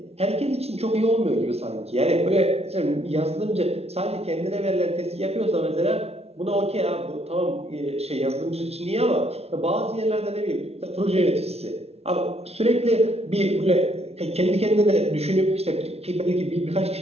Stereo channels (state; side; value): late; left; 0.30 ms